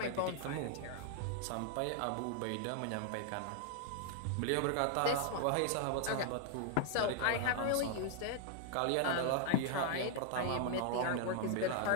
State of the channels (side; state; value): both; different; correlation 0.00